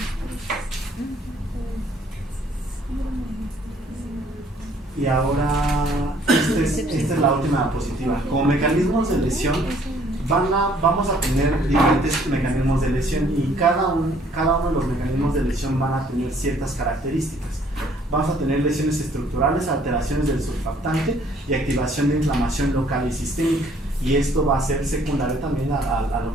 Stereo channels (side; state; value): both; normal; correlation 0.61